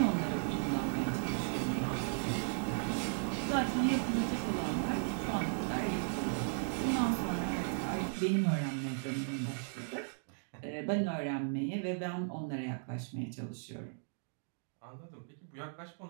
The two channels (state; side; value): silent; left; digital silence